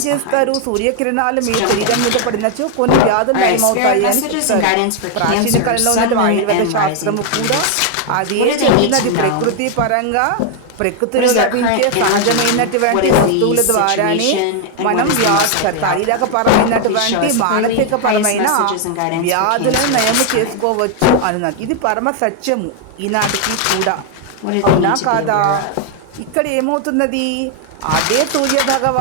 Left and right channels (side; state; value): both; different; correlation 0.00